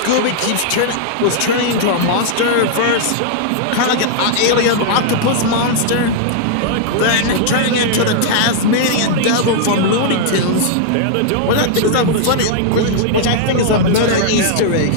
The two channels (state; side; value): different; both; correlation -0.01